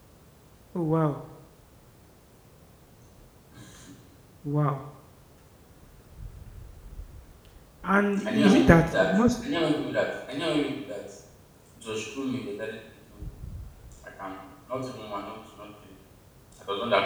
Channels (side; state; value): both; identical; correlation 1.00